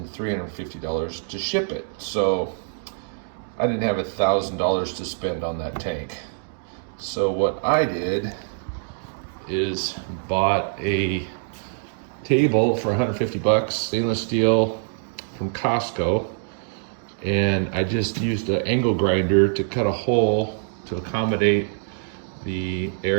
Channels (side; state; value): left; silent; digital silence